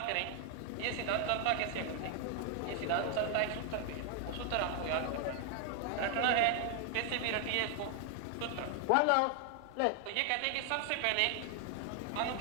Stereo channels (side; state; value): both; different; correlation 0.00